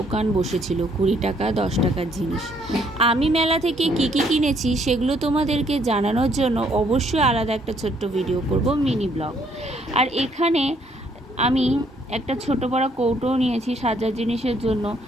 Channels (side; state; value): both; normal; correlation 0.67